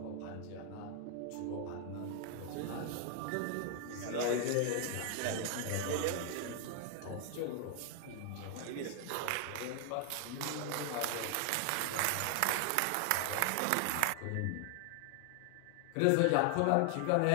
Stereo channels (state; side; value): different; both; correlation 0.00